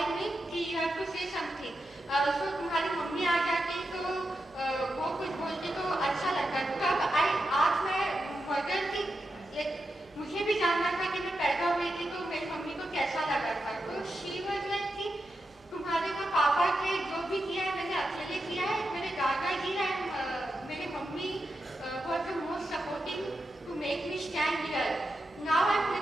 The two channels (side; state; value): both; normal; correlation 0.88